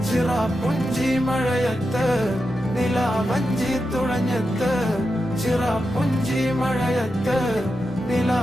ചിറാപ്പുഞ്ചി മഴയത്ത് നിലാവഞ്ചി തുഴഞ്ഞത്ത്, ചിറാപ്പുഞ്ചി മഴയത്ത്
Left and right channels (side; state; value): both; normal; correlation 0.89